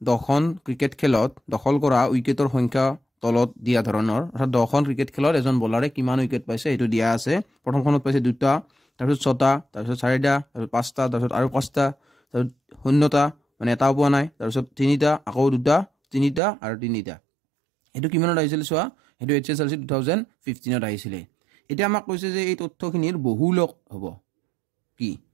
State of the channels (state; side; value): drops out; left; at 16.4 s